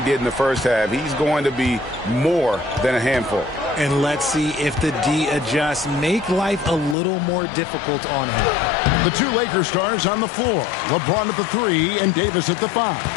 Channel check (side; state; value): right; drops out; at 7.0 s